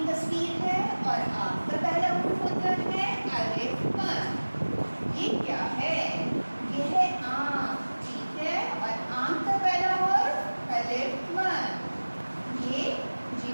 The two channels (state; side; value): inverted; both; correlation -1.00